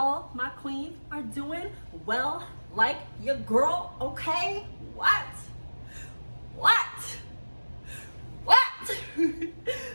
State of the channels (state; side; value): inverted; both; correlation -1.00